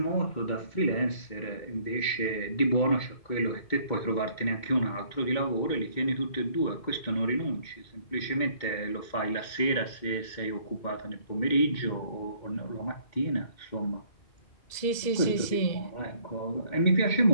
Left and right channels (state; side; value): late; right; 1.9 ms